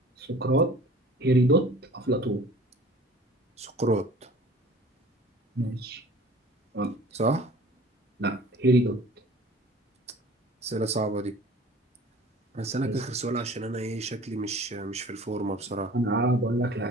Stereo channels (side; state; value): both; normal; correlation 0.46